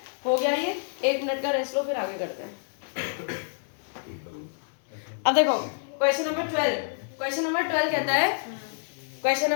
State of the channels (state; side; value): silent; right; digital silence